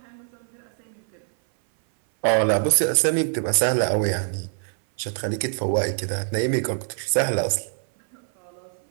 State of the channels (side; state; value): left; silent; 58 dB below the other